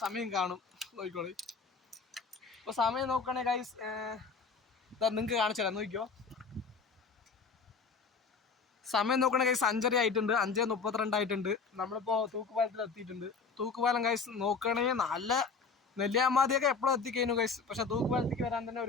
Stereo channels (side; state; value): right; quieter; 5.0 dB